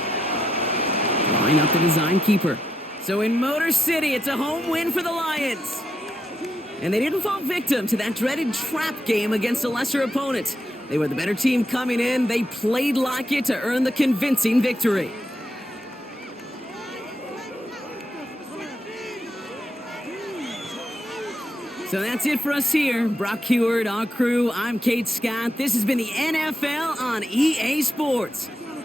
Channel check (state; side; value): normal; both; correlation 0.82